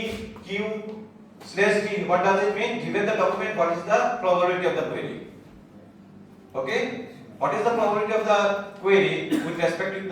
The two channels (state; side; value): identical; both; correlation 1.00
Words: Q slash T. What does it mean? Given the document, what is the probability of the query? Okay. What is the probability of the query with respect to